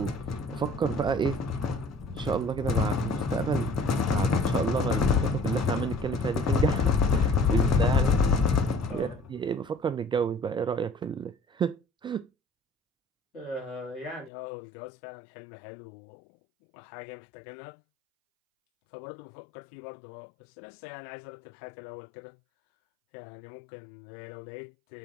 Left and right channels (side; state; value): right; drops out; at 14.3 s